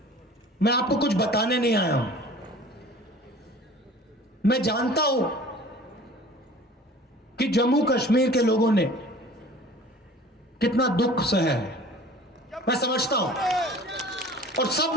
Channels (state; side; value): normal; both; correlation 0.45